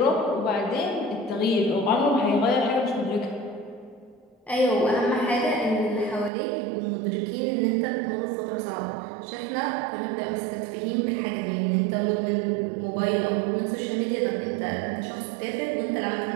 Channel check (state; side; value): drops out; left; at 6.3 s